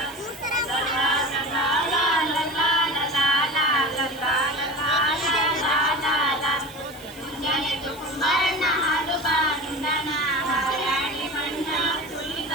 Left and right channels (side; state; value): right; noise; hiss, 20 dB below the sound